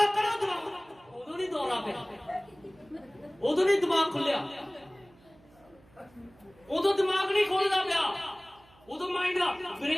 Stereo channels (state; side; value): noise; right; hum, 28 dB below the sound